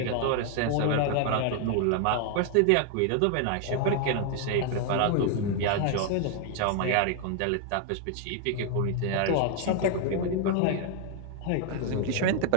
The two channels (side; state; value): both; different; correlation 0.00